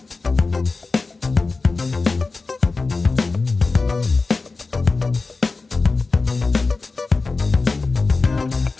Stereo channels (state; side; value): quieter; right; 3.9 dB